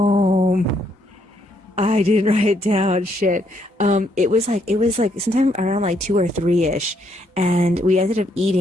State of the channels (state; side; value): normal; both; correlation 0.72